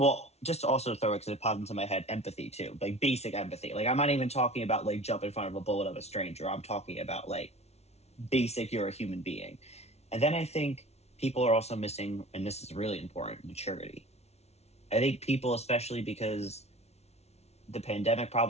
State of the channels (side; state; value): right; late; 0.31 ms